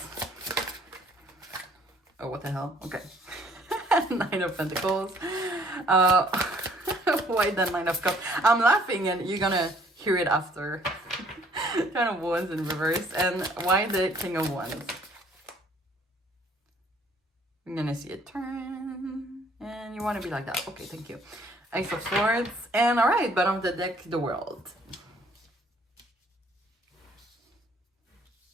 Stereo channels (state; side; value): normal; both; correlation 0.60